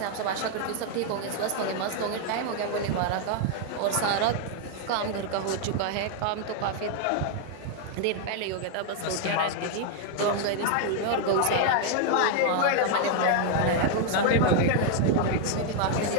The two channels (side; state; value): both; different; correlation 0.00